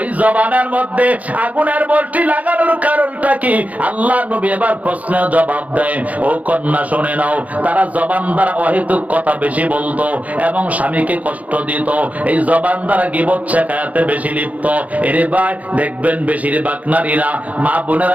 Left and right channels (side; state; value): left; late; 0.072 ms